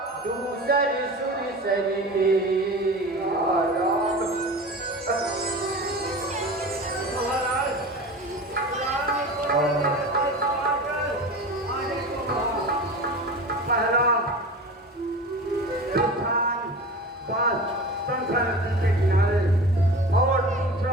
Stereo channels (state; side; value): normal; both; correlation 0.34